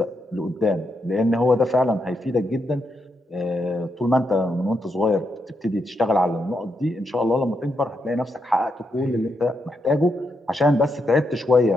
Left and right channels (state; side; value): normal; both; correlation 0.82